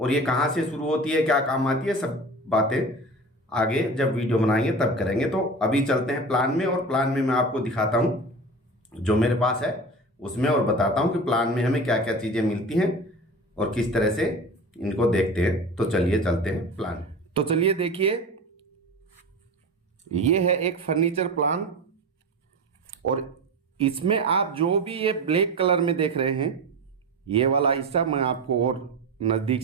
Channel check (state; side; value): normal; both; correlation 0.31